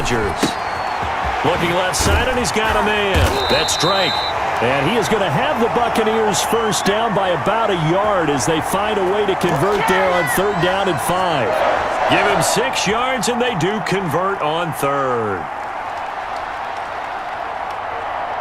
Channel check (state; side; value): identical; both; correlation 1.00